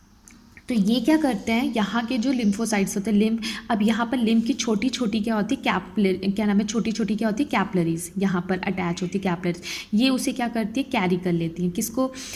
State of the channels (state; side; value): identical; both; correlation 1.00